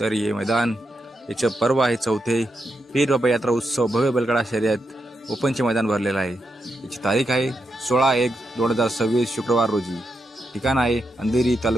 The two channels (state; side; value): normal; both; correlation 0.84